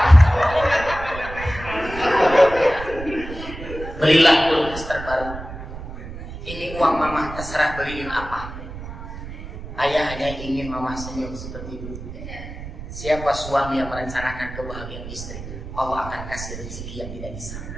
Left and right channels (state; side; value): noise; right; rumble, 11 dB below the sound